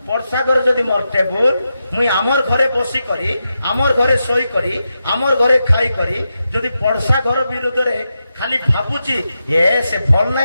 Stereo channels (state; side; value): inverted; both; correlation -0.88